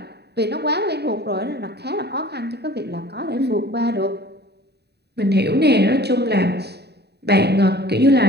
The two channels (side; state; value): left; late; 0.48 ms